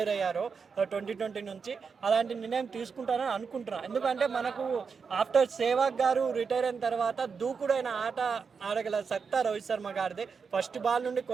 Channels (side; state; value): left; quieter; 5.6 dB